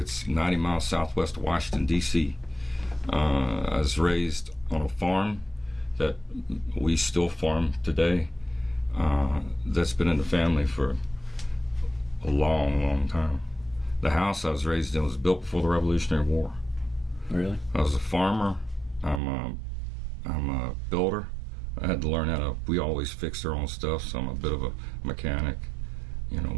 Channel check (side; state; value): left; drops out; at 19.2 s